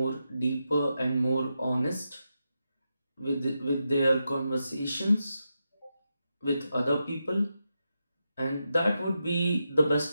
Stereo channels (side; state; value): both; inverted; correlation -0.87